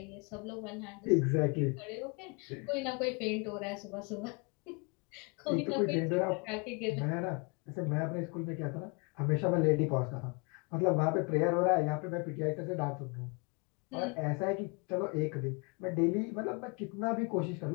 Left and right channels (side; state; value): right; quieter; 32.3 dB